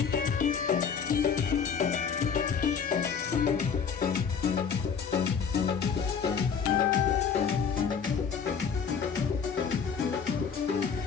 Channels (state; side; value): quieter; right; 6.5 dB